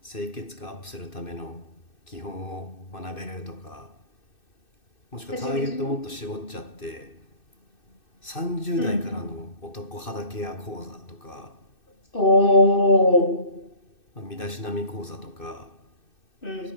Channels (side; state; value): right; late; 2.6 ms